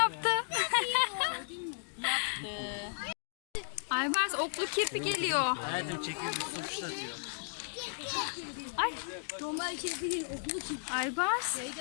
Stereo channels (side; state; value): right; silent; digital silence